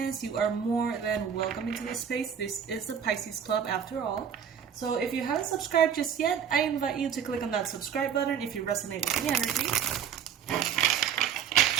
you are more than welcome into this space. This is the Pisces Club after all. So if you haven't subscribed just yet, I invite you to click on that subscribe button if you resonate with the energy.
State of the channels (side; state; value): left; quieter; 8.1 dB